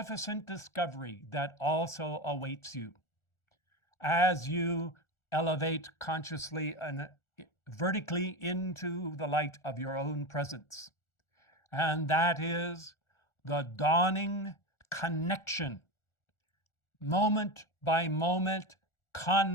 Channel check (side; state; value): right; late; 1.4 ms